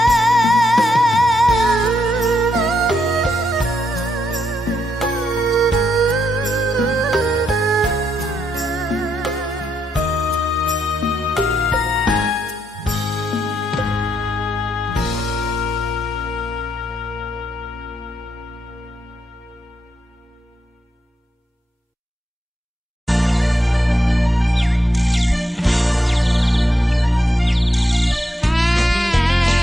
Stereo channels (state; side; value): normal; both; correlation 0.80